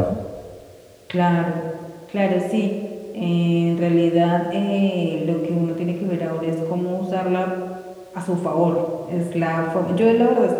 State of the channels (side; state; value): both; identical; correlation 1.00